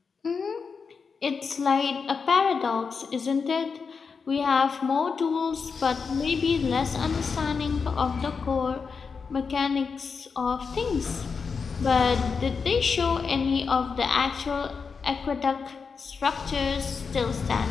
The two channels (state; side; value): quieter; right; 5.4 dB